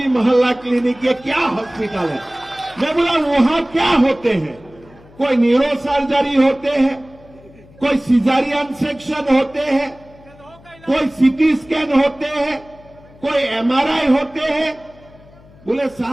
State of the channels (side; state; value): left; noise; hum, 25 dB below the sound